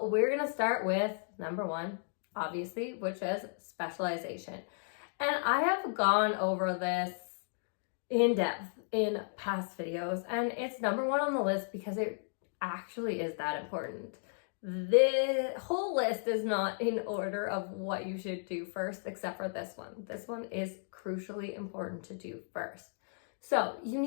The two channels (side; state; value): right; silent; digital silence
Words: we're going to start with number 1, obviously, which is specialization. And I have gone over this in depth in past videos, and it's number 1 on the list because it actually is that important. The whole list is not in order of what you should do first, except for this one. This one is crucially important to do first. So you